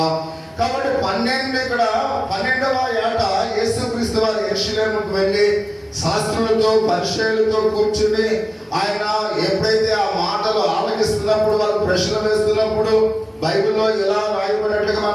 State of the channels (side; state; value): both; identical; correlation 1.00